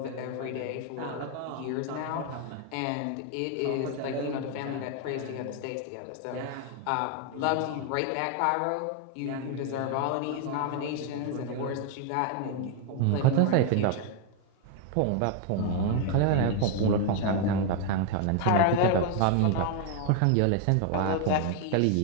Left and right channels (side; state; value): both; different; correlation 0.01